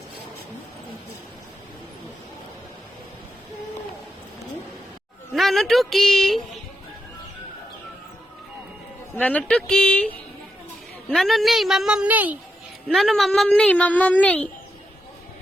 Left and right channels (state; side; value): normal; both; correlation 0.85